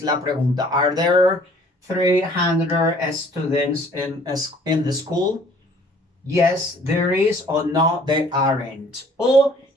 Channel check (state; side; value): normal; both; correlation 0.55